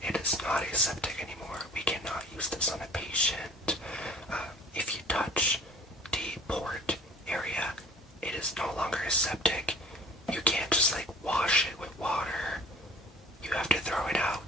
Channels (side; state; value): both; normal; correlation 0.48